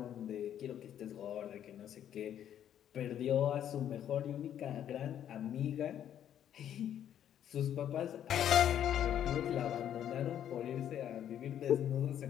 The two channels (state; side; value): quieter; right; 10.2 dB